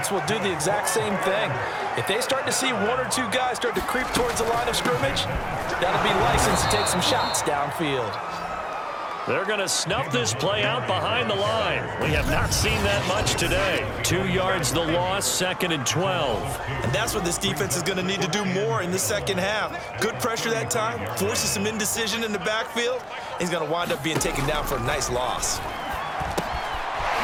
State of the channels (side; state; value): both; identical; correlation 1.00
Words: will do the exact same thing. If they start to see one or two guys start to creep towards the line of scrimmage, that'll be license to take some shots downfield. They're going to snuff this play out behind the line. We have not seen that much today. 2 yards the loss, 2nd and 12. And that's what this defense is going to need to do more in the second half. Good pressure that time, forces some indecision in the backfield. He's going to wind up being taken down for a nice loss.